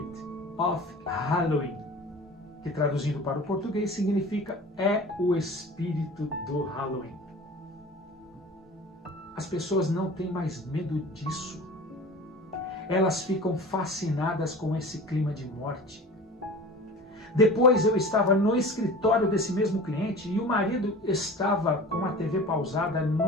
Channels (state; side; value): normal; both; correlation 0.38